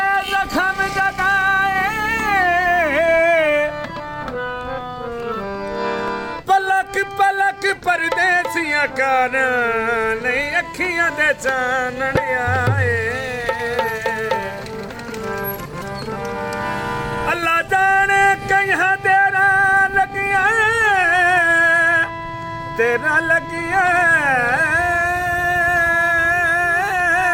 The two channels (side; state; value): both; identical; correlation 1.00